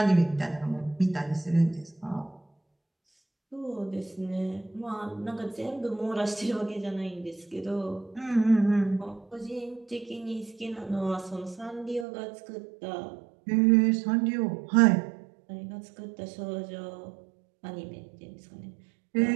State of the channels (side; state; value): left; drops out; at 12.1 s